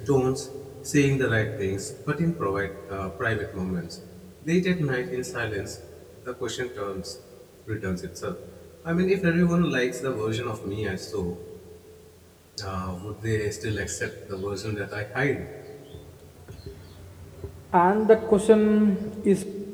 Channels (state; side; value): identical; both; correlation 1.00